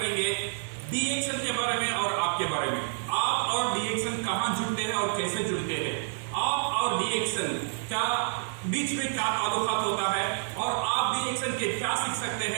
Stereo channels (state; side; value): silent; left; 57 dB below the other